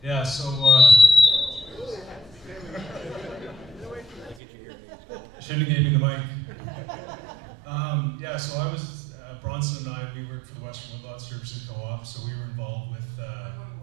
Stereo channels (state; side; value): drops out; left; at 4.4 s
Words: Yeah, so shouldn't have gave me the mic. Yeah, so I was Bronson and I. We worked for the Western Woodlot Services Co-op, so we were involved with.